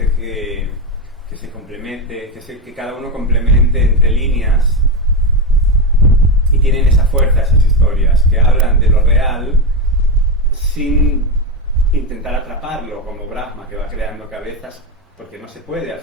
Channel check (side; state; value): both; normal; correlation 0.12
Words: que se complemente, que cada uno complemente entre líneas, y tienen esa fuerza esas historias, que hablan de lo real sin intentar atraparlo, como Brahma, que va creando cabezas, porque no se puede. Al